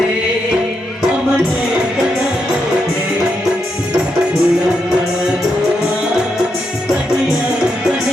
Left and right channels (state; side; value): normal; both; correlation 0.82